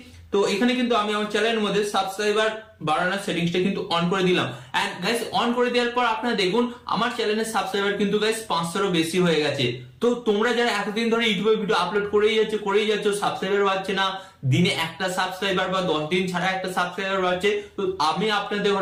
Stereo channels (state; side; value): identical; both; correlation 1.00